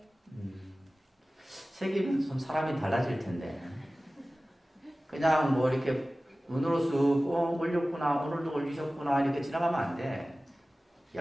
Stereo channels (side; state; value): both; normal; correlation 0.97